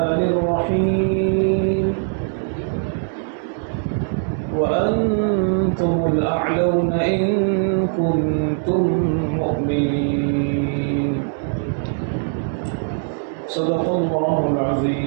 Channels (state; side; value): silent; left; digital silence